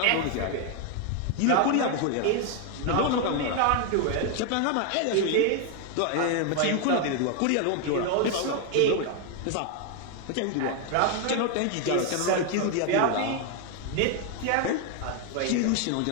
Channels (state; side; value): different; both; correlation 0.01